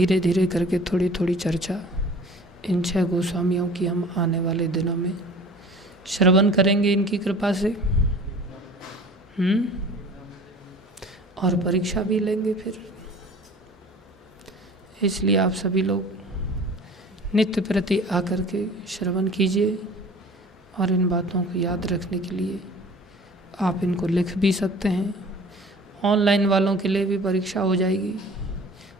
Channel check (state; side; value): normal; both; correlation 0.45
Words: धीरे करके थोड़ी थोड़ी चर्चा इन 6 गोस्वामियों की हम आने वाले दिनों में श्रवण करेंगे इनकी कृपा से। और परीक्षा भी लेंगे फिर। इसलिए आप सभी लोग नित्य प्रति आकर के श्रवण कीजिए और इन बातों को याद रखने के लिए आप इनको लिख भी सकते हैं। ऑनलाइन वालों के लिए भी परीक्षा हो जाएगी,